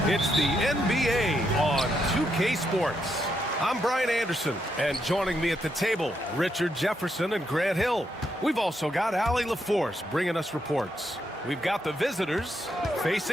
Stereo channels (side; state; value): both; normal; correlation 0.79